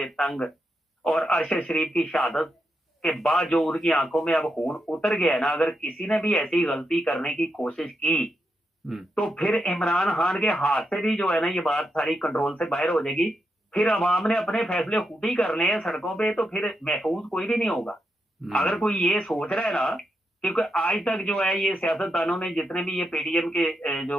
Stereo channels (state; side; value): normal; both; correlation 0.84